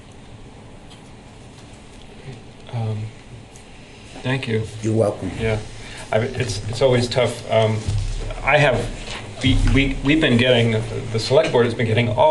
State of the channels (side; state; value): both; identical; correlation 1.00